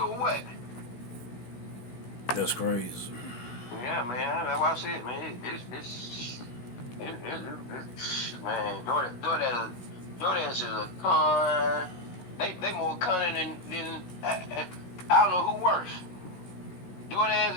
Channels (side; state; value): right; late; 16 ms